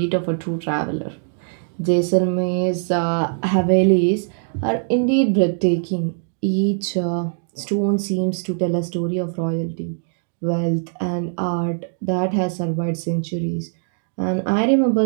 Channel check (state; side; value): silent; left; digital silence